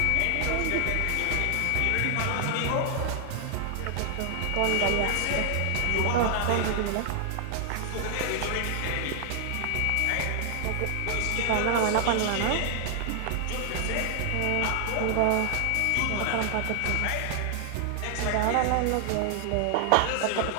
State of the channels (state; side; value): different; both; correlation 0.00